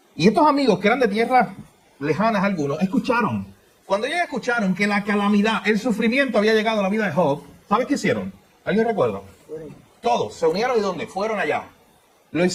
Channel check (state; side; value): identical; both; correlation 1.00